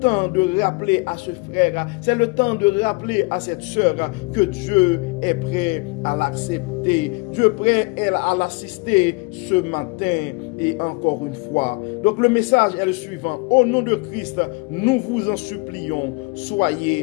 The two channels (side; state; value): right; quieter; 28.3 dB